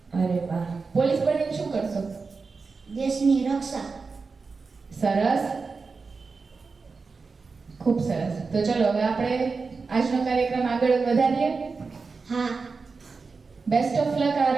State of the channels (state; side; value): quieter; left; 4.5 dB